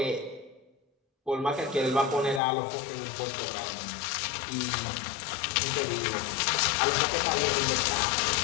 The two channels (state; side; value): drops out; right; at 2.4 s